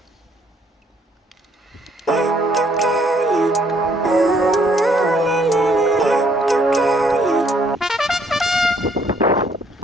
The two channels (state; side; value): normal; both; correlation 0.65